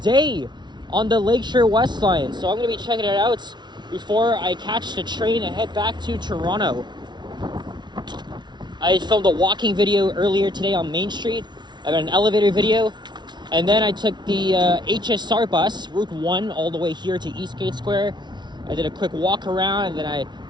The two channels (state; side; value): late; left; 0.21 ms